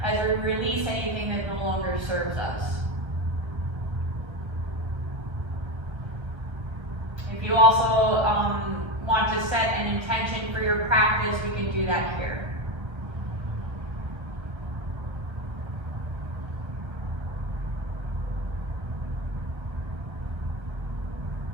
as we release anything that no longer serves us. If you also want to set an intention for your practice, we can do that here.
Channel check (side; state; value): left; late; 1.3 ms